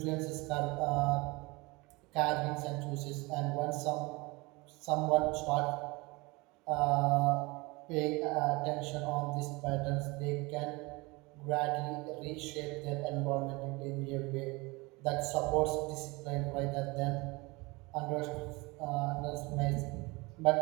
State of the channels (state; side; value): quieter; left; 24.8 dB